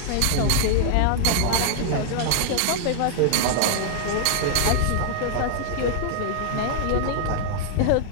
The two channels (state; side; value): different; both; correlation -0.01